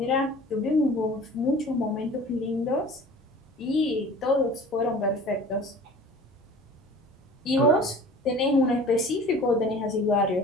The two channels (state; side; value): normal; both; correlation 0.44